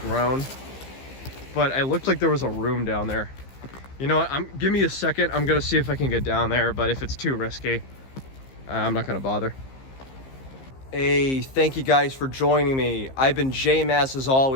but it looked like there was a room down there. You know what, give me a second. I'm gonna see if I can get down there, but if it's too risky, I'm not gonna bother. Hey, thank you guys for joining me. I've been J-Mass as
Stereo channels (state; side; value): late; right; 15 ms